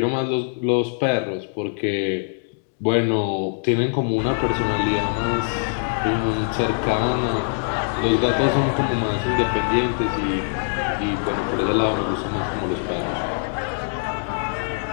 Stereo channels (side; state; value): right; silent; digital silence